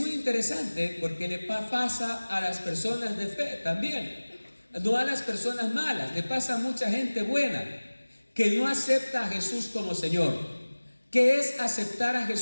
interesante porque le pasa a las personas de fe también, no a las personas malas, le pasa a mucha gente buena que no acepta a Jesús como Señor. ¿Qué es aceptar a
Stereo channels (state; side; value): inverted; both; correlation -1.00